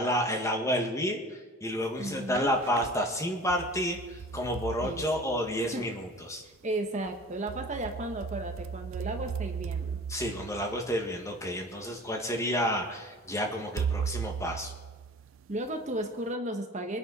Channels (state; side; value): normal; both; correlation 0.42